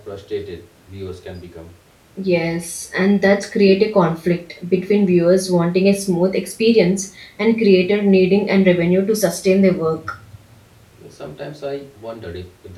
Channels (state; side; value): identical; both; correlation 1.00